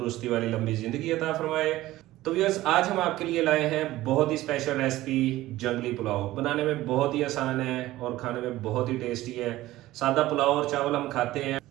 वाली लंबी ज़िंदगी अता फरमाए। तो व्यूअर्स, आज हम आपके लिए लाए हैं बहुत ही स्पेशल रेसिपी, जंगली पुलाव। बनाने में बहुत ही आसान है और खाने में बहुत ही टेस्टी है। सादा पुलाव और चावल हम खाते हैं,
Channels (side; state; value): left; quieter; 16.4 dB